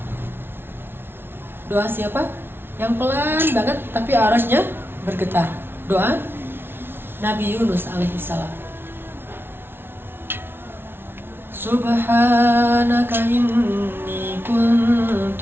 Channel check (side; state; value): left; late; 0.11 ms